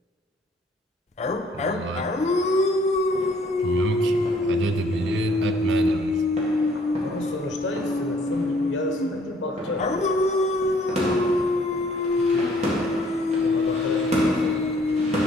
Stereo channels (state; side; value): normal; both; correlation 0.61